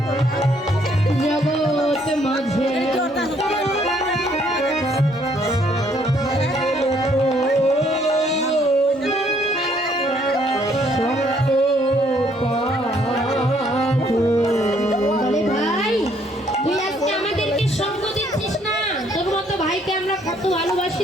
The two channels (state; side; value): normal; both; correlation 0.66